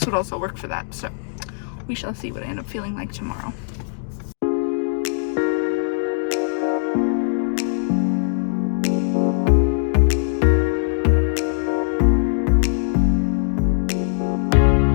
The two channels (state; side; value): silent; right; digital silence